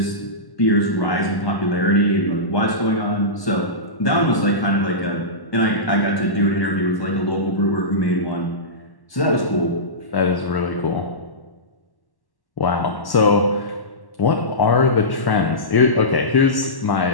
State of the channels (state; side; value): late; right; 1.1 ms